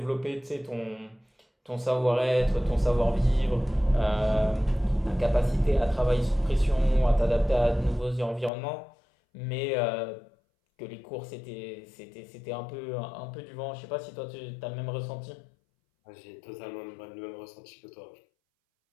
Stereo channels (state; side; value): drops out; right; at 8.5 s